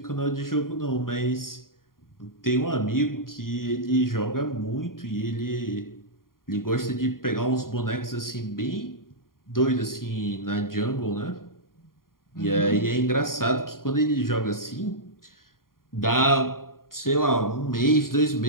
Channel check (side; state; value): right; late; 0.91 ms